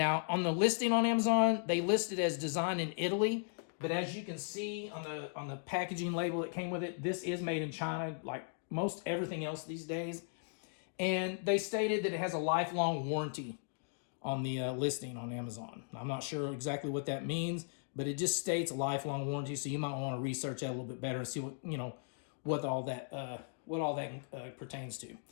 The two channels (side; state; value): right; silent; digital silence